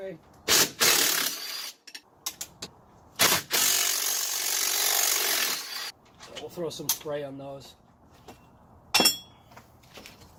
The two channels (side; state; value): both; identical; correlation 1.00